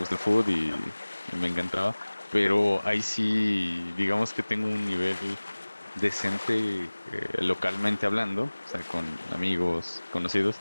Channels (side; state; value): both; inverted; correlation -1.00